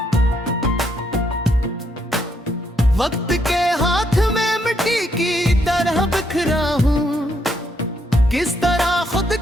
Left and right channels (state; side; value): normal; both; correlation 0.74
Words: वक्त के हाथ में मिट्टी की तरह बिखरा हूँ, किस तरह खुद